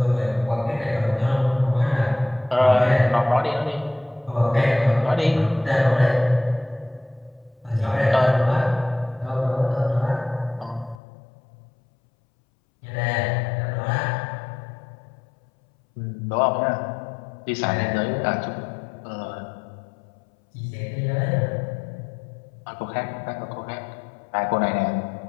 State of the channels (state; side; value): drops out; right; at 11.0 s